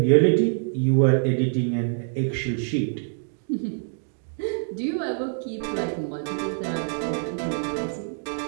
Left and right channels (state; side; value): silent; left; digital silence